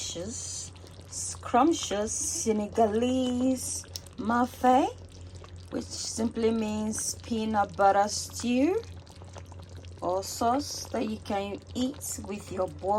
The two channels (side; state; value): both; identical; correlation 1.00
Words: scrumptious Senegalese Maafe, which simply means peanut butter stew or sauce that you can eat with your